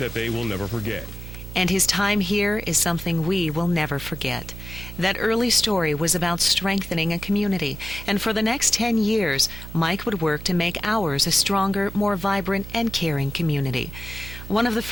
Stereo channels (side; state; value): right; noise; hum, 11 dB below the sound